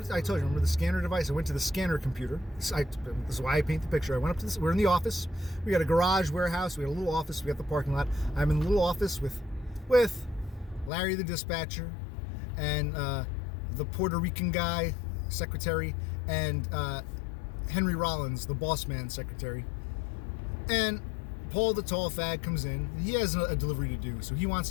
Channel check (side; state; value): right; drops out; at 10.9 s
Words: you, remember the scanner device? I went to the scanner computer. This is why I paint the picture. I went up to this, we're in the office. We got a garage warehouse. We got a little office. We got the parking lot. I'm in the little office with Larry the dispatcher, and the Puerto Rican guy, secretary, and Henry Rollins, the boss man secretary. And Paul, the tall fag, comes in. He has a delivery to do, so he wants